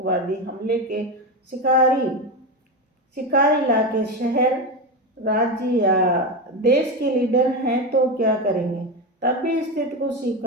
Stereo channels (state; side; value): normal; both; correlation 0.16